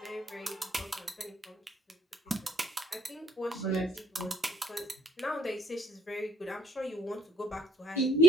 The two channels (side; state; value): both; normal; correlation 0.66